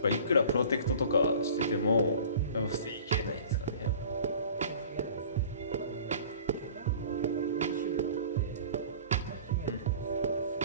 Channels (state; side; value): inverted; both; correlation -0.44